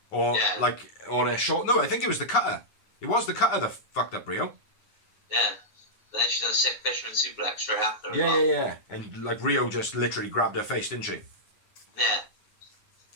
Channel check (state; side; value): late; right; 9.6 ms